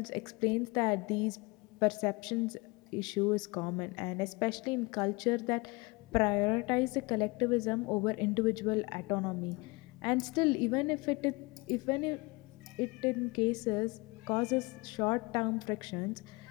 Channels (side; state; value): right; quieter; 25.6 dB